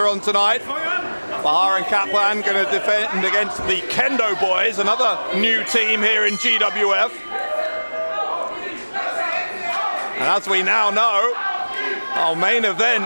on tonight. Bahar and Kaplan going to defend against the Kendo boys, another new team here in GWF. And as we now know, our main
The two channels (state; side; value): inverted; both; correlation -1.00